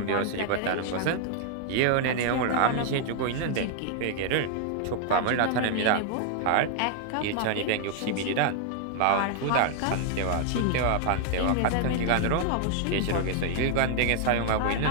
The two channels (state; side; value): different; both; correlation 0.00